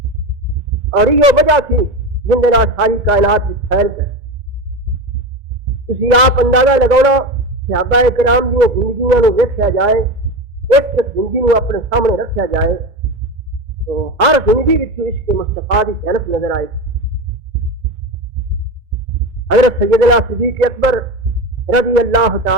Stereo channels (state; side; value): late; left; 2.3 ms